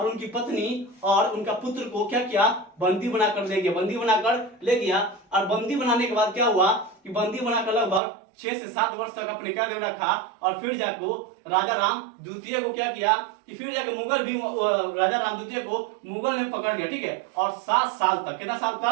उनकी पत्नी और उनका पुत्र को क्या किया? बंदी बनाकर ले गया। और बंदी बनाने के बाद क्या हुआ कि बंदी बनाकर लगभग 6 से 7 वर्ष तक अपने कैद में रखा। और फिर जाको राजाराम द्वितीय को क्या किया कि फिर जाके मुगल भी राजाराम द्वितीय को मुगल ने पकड़ लिया। ठीक है, और 7 साल तक, कितना साल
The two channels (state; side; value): drops out; left; at 8.0 s